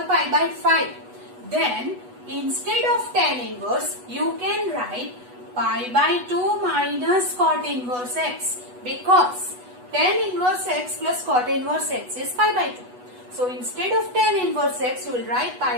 pi by 5. Then, instead of tan inverse, you can write pi by 2 minus cot inverse x, because tan inverse x plus cot inverse x is pi by 2. So, instead of tan inverse x, you will write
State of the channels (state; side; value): late; left; 8.1 ms